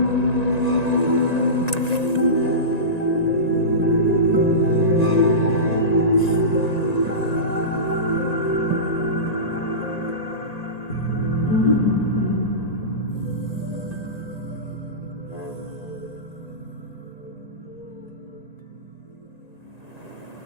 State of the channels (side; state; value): right; late; 1.9 ms